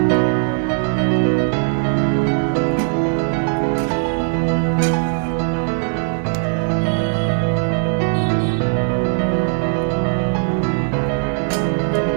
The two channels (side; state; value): left; silent; digital silence